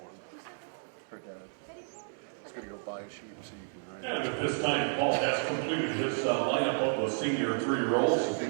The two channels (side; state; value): left; silent; digital silence